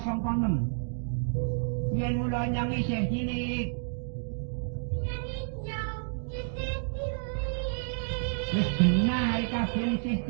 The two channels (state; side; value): silent; left; digital silence